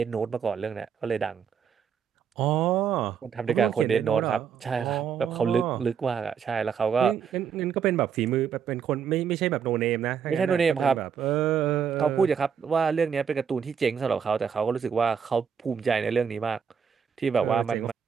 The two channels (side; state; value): left; quieter; 7.2 dB